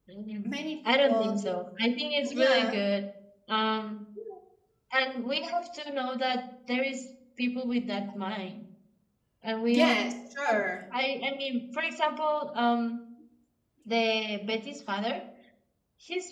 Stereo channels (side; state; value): both; identical; correlation 1.00